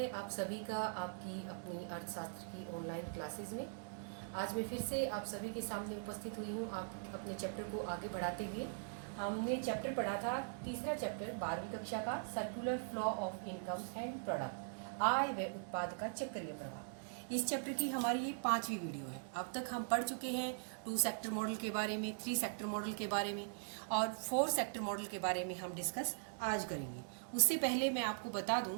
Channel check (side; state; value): left; silent; digital silence